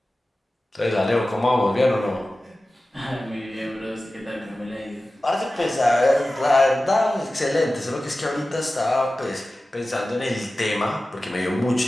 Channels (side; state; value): both; normal; correlation 0.95